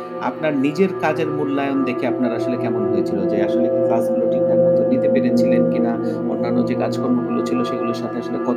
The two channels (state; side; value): identical; both; correlation 1.00